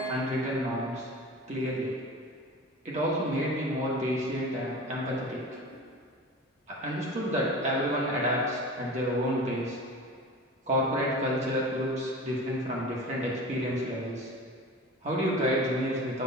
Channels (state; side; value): normal; both; correlation 0.35